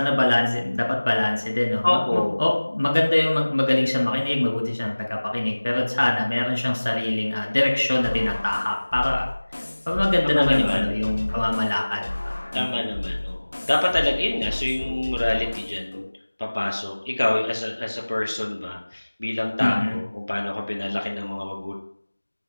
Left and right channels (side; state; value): both; inverted; correlation -1.00